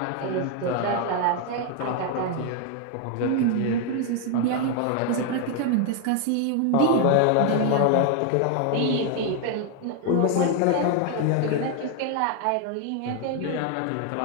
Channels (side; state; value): both; different; correlation 0.01